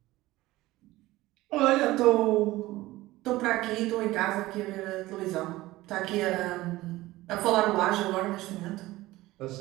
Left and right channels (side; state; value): left; quieter; 17.9 dB